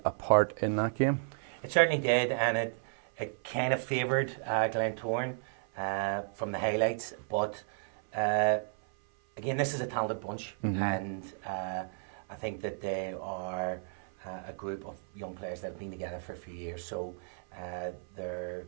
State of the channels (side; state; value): left; silent; 56 dB below the other